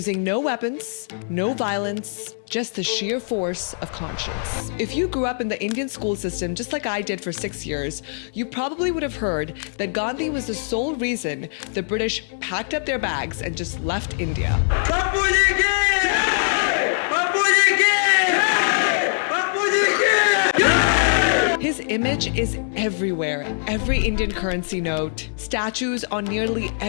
no weapons, no violence, just the sheer force of conscience. If you grew up in the Indian school system just like I did for 6 years, you probably would have heard that Gandhi was the sole reason the British packed up their bags and just left India. His image is everywhere. Every Indian currency note, statues on nearly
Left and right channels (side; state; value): right; silent; digital silence